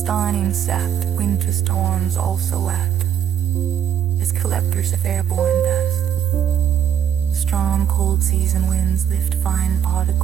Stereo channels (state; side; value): quieter; left; 9.3 dB